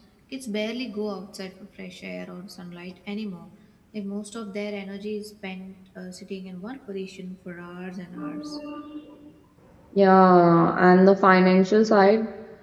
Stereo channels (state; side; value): identical; both; correlation 1.00